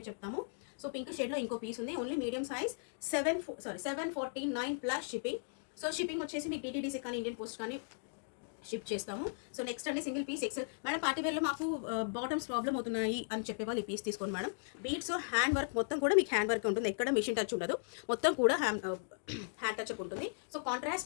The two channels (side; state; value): right; silent; digital silence